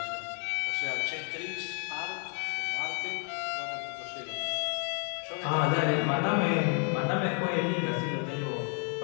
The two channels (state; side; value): quieter; right; 39.6 dB